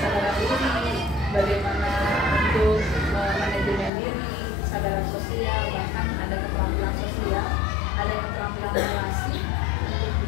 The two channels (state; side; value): drops out; right; at 3.9 s